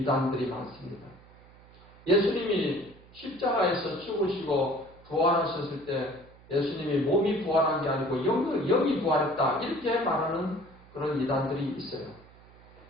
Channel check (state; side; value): noise; right; hum, 24 dB below the sound